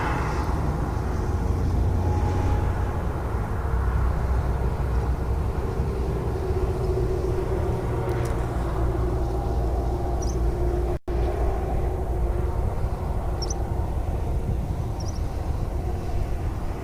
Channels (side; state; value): both; identical; correlation 1.00